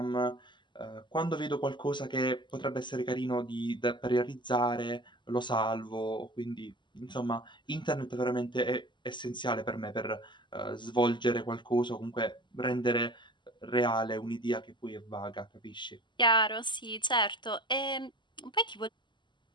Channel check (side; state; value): right; late; 0.22 ms